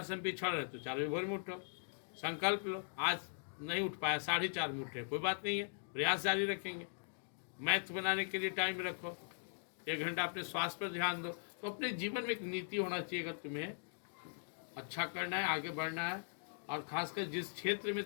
से हम पिछड़ रहे, तो 4 बजे भोर में उठो, संकल्प लो। आज नहीं उठ पाया, 4:30 में उठे, कोई बात नहीं है, प्रयास जारी रखेंगे। मैथ बनाने के लिए टाइम रखो, 1 घंटा अपने स्वास्थ्य पर ध्यान दो। तो अपने जीवन में एक नीति होना चाहिए, अगर तुम्हें अच्छा करना है, आगे बढ़ना है, और खासकर जिस क्षेत्र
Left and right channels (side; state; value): right; silent; digital silence